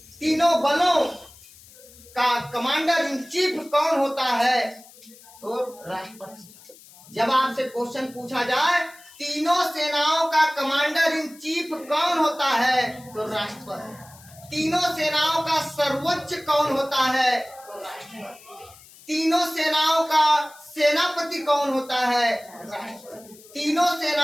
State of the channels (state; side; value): noise; left; hiss, 23 dB below the sound